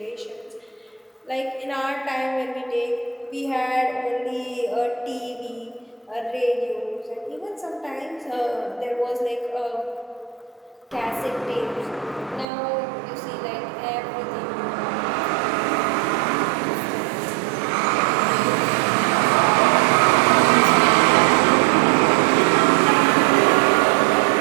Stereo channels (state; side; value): drops out; left; at 12.5 s